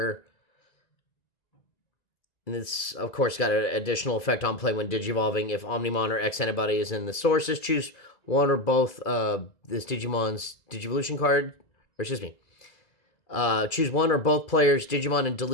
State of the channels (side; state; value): right; late; 2.4 ms